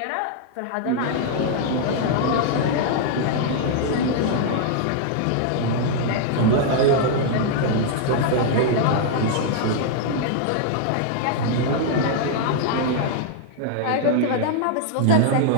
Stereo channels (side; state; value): both; different; correlation -0.01